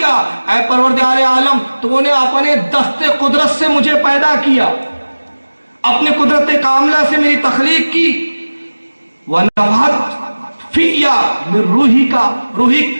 اے پروردگار عالم تو نے اپنے دست قدرت سے مجھے پیدا کیا، اپنے قدرت کاملہ سے میری تخلیق کی، وَنَفَحَتْ فِيَّ مِن رُوحِكَ،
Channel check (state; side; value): inverted; both; correlation -1.00